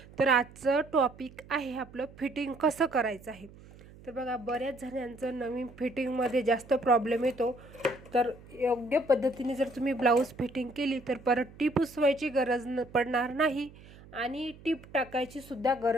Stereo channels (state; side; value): noise; right; hum, 21 dB below the sound